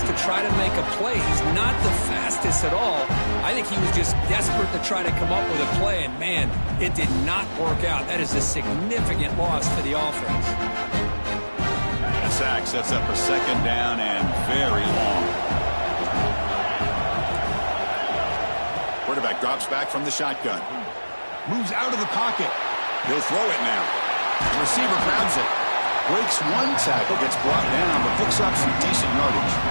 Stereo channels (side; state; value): both; inverted; correlation -1.00